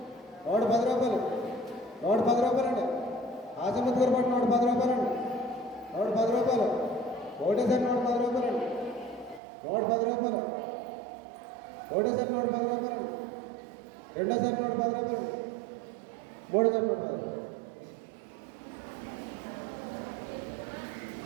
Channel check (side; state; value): left; drops out; at 9.4 s